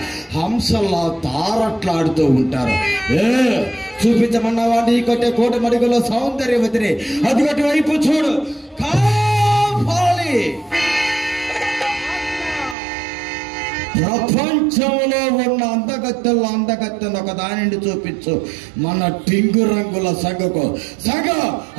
హంసల్లా తారట్లాడుతూ ఉంటారు. చూపించమన్నావా నీ కొట్టే కోటి మడుగులో సౌందర్యవతిని? అదిగటి వైపు చూడు, కావాలి. ప్రపంచంలో ఉన్న అందగత్తెల్లో అందగత్తెను ఒక దానిని చూపించు, మన టింగు రంగుల సంగకు సంగ.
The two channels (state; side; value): drops out; left; at 12.8 s